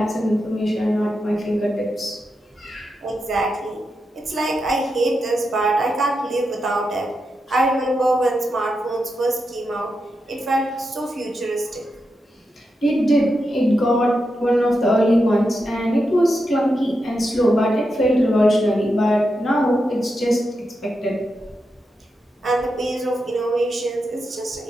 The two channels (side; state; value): both; normal; correlation 0.87